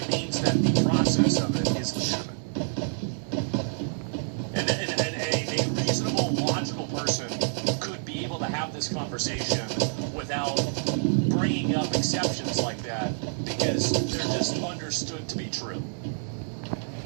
means that the process of it is legitimate. And a reasonable, logical person could be able to have this conversation without bringing up exceptions like that because they're just understood to be true.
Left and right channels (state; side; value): silent; left; digital silence